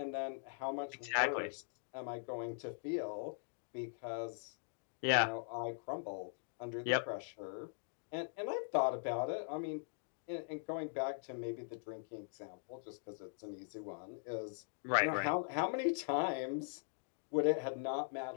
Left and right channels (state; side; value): silent; right; digital silence